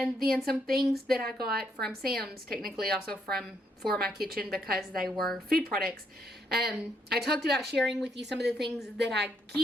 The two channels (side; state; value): both; normal; correlation 0.74